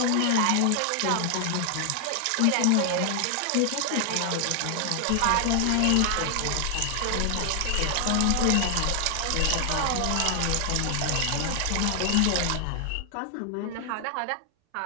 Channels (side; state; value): both; different; correlation 0.00